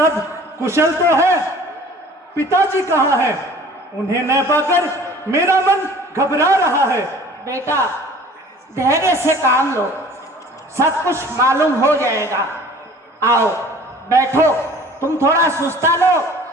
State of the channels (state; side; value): normal; both; correlation 0.48